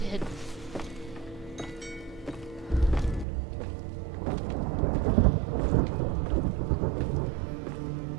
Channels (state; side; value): drops out; left; at 3.2 s